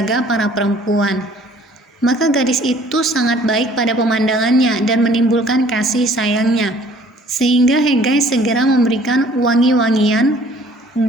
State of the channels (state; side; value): normal; both; correlation 0.55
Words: para perempuan. Maka gadis itu sangat baik pada pemandangannya dan menimbulkan kasih sayangnya, sehingga Hegai segera memberikan wangi-wangian